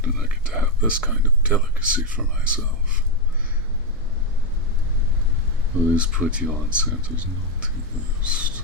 I get to have this kind of delicacy for myself. Will this put you on Santa's naughty list?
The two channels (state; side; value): normal; both; correlation 0.05